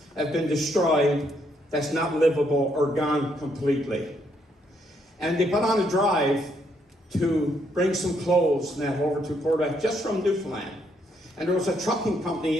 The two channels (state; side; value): normal; both; correlation 0.73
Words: have been destroyed, that's not livable or gone completely. And they put on a drive to bring some clothes and that over to Port aux Basques, just from Newfoundland. And there was a trucking company